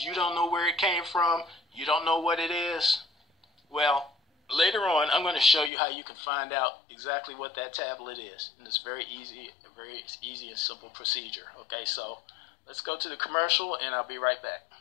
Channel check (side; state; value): right; drops out; at 5.7 s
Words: don't know where it came from? You don't know what it is? Well, later on, I'm going to show you how you can find out exactly what that tablet is. And it's very easy and simple procedure. Okay, so let's go to the commercial, and I'll be right back.